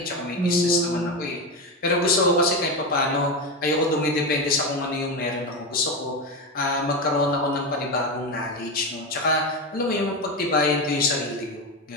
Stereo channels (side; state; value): both; normal; correlation 0.16